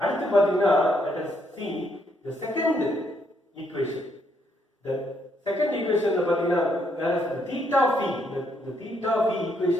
அடுத்து பாத்தீங்கன்னா let us see the second equation. The second equation ல பாத்தீங்கன்னா whereas the theta phi the theta phi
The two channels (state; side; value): normal; both; correlation 0.73